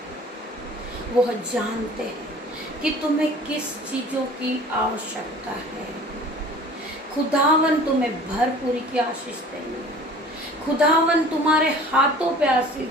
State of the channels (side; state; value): both; normal; correlation 0.45